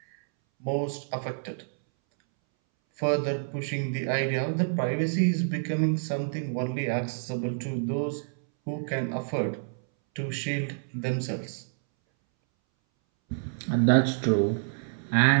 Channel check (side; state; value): left; silent; 59 dB below the other